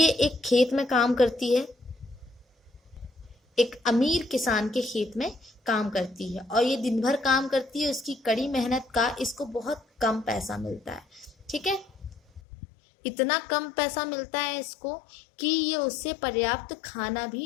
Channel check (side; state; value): right; drops out; at 12.4 s